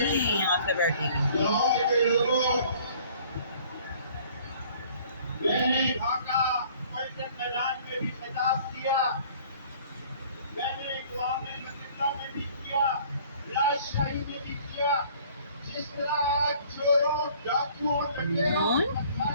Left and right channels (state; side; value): inverted; both; correlation -0.54